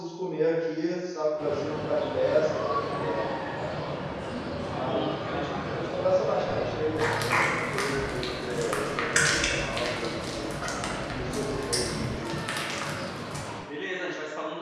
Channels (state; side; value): identical; both; correlation 1.00